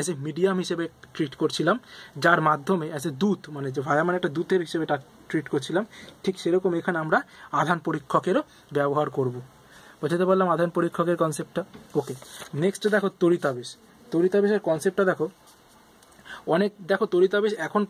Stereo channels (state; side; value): identical; both; correlation 1.00